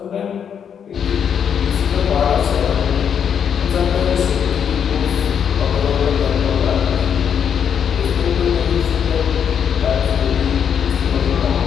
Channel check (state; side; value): quieter; right; 7.9 dB